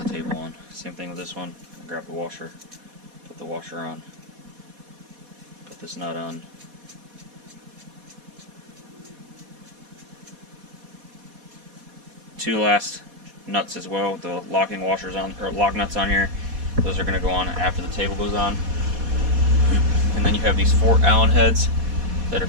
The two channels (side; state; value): left; late; 4.2 ms